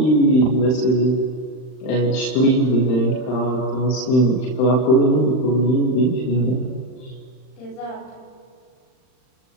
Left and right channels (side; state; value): right; late; 39 ms